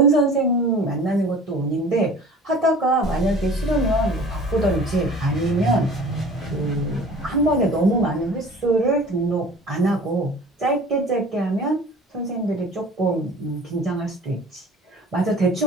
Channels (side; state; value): both; normal; correlation 0.44